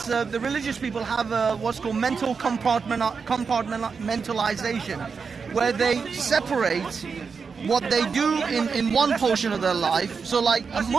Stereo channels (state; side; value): quieter; left; 5.4 dB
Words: the religious people have what's called mental compartmentalization, where they separate what they do in one portion of their life. So like a